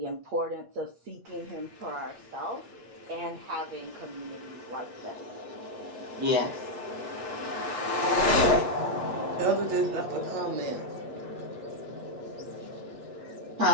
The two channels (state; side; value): late; left; 8.4 ms